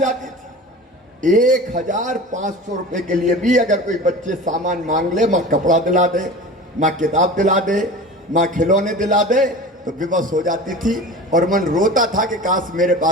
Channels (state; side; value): normal; both; correlation 0.35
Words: आती थी, 1500 रुपए के लिए भी अगर कोई बच्चे सामान मांग ले, माँ कपड़ा दिला दे, माँ किताब दिला दे, माँ खिलौने दिला दे, तो विवश हो जाती थी। और मन रोता था कि काश मेरे